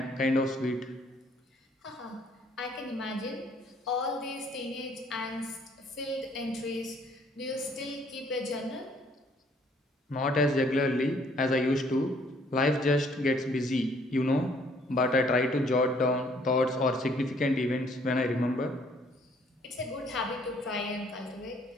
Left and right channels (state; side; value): normal; both; correlation 0.62